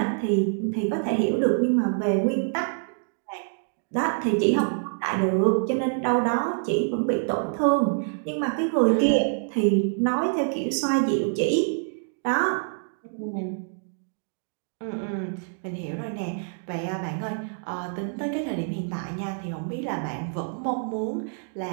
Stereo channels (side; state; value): left; silent; digital silence